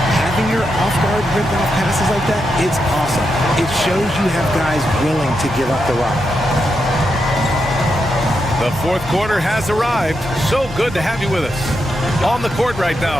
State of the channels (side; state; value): both; normal; correlation 0.84